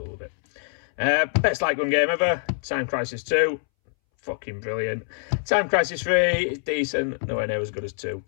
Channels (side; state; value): right; silent; 62 dB below the other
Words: love it. Best light gun game ever. Time Crisis 2. Fucking brilliant. Time Crisis 3 is decent, nowhere near as good as 2.